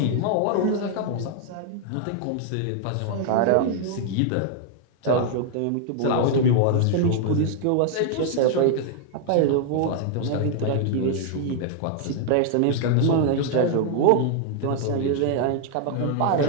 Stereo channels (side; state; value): both; different; correlation 0.00